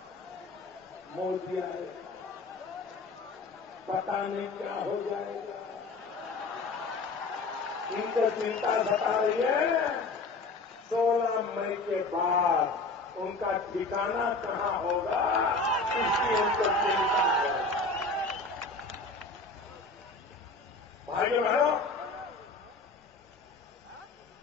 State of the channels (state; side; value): quieter; right; 3.4 dB